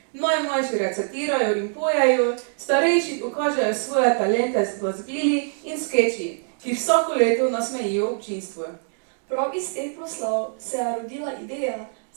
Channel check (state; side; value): silent; left; digital silence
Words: Najmlajši recitirajo in pojejo, starejši pokažejo svoje talente z glasbili in skeči, ki vsako leto nasmejijo občinstvo. Prav iz teh proslav se je rodila ideja